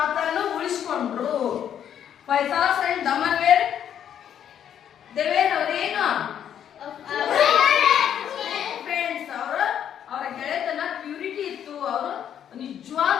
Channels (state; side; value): quieter; right; 9.4 dB